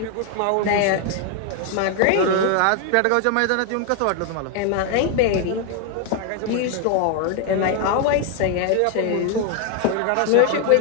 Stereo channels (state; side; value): different; both; correlation 0.00